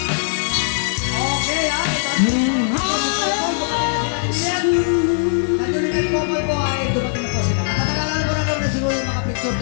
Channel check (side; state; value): right; silent; digital silence